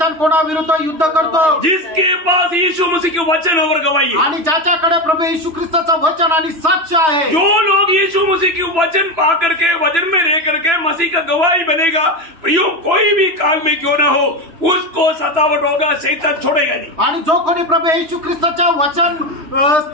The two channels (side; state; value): left; late; 3.0 ms